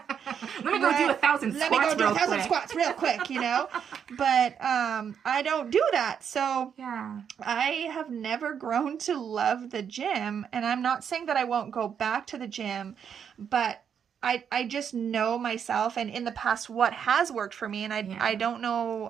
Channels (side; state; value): left; quieter; 7.8 dB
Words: me go do 1,000 squats. Let me go do 1,000 squats real quick, you know? But I don't do that. So yeah, I have never grown to love the gym. And I'm not saying that I won't go back to the gym, but I just know myself and in the past what has worked for me. And I don't